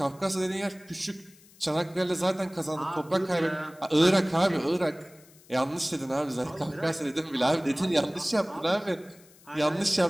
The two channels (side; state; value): left; noise; hiss, 26 dB below the sound